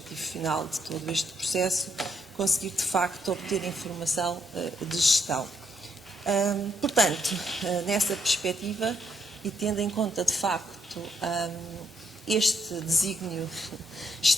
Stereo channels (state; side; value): normal; both; correlation 0.75